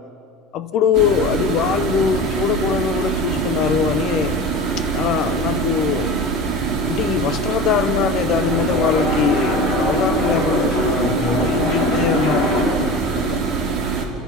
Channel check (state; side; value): normal; both; correlation 0.32